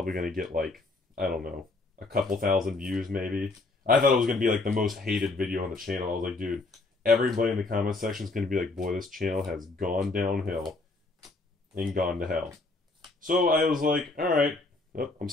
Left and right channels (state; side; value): quieter; right; 3.3 dB